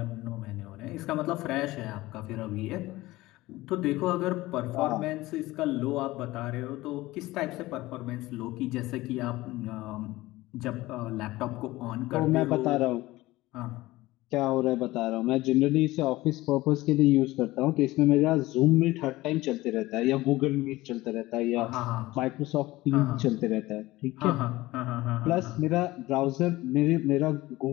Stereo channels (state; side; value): quieter; right; 18.5 dB